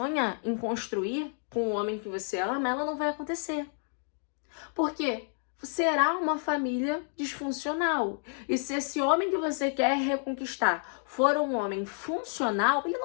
em construir com o homem que você ama, ela não vai acontecer. Porque será uma família disfuncional. E se esse homem que você quer reconquistar for um homem funcional, ele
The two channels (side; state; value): right; silent; 56 dB below the other